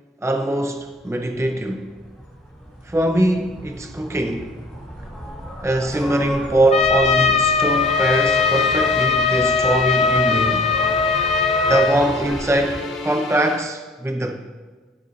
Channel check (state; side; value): normal; both; correlation 0.51